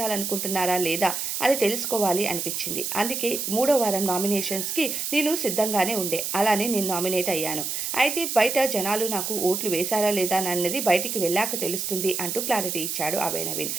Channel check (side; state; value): right; noise; hiss, 3 dB below the sound